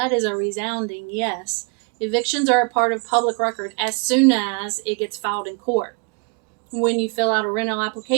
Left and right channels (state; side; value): quieter; left; 35.2 dB